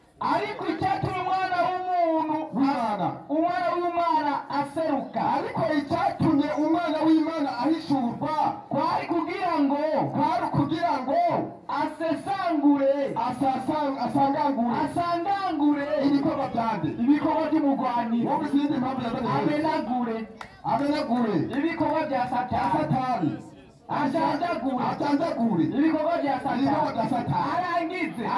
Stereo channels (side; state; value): both; identical; correlation 1.00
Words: Ariko icyatumye umwana w'Imana aseruka. ariko icyatumye umwana w'Imana ahishurwa kwari kugira ngo asangangure ibikorwa byande ibikorwa by'umugwanira. wowe izindi mpamvu yazanye amenagure ibikorwa bya Satani. ajanjagure ibikorwa bya Satani. arangize